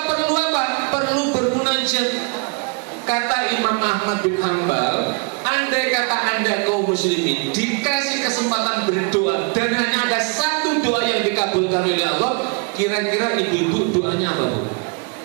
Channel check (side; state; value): left; quieter; 34.0 dB